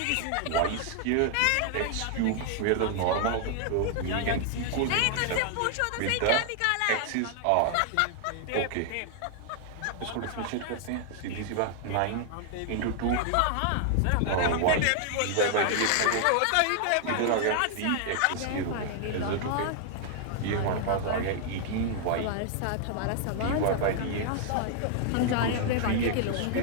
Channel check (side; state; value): both; different; correlation 0.00